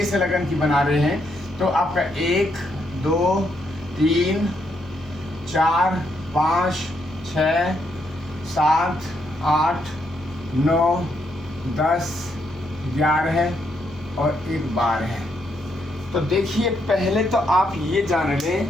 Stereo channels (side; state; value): both; normal; correlation 0.76